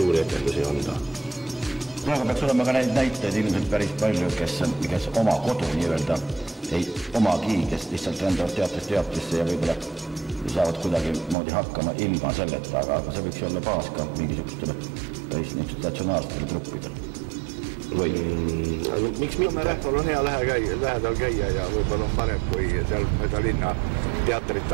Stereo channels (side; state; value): left; drops out; at 11.4 s